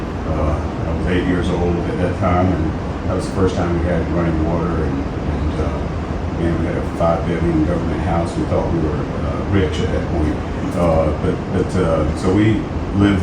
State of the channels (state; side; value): identical; both; correlation 1.00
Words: I was 8 years old at that time, and that was the first time we had running water, and we had a 5-bedroom government house. We thought we were rich at that point. So we lived